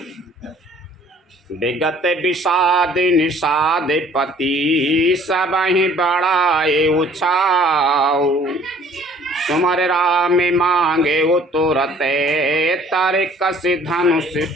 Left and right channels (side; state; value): both; normal; correlation 0.55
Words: विगत विषाद निषाद पति सबहि बढ़ाए उछाऊ। सुमर राम मांगे उतरते तारे कस धनुष